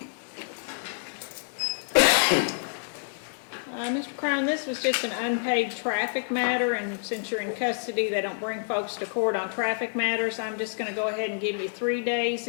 Mr. Crown, this was just an unpaid traffic matter, and since you're in custody, they don't bring folks to court on traffic matters. I'm just going to go ahead and give you 3 days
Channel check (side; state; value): right; silent; 59 dB below the other